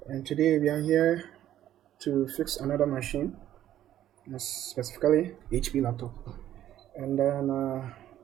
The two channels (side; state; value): left; quieter; 12.1 dB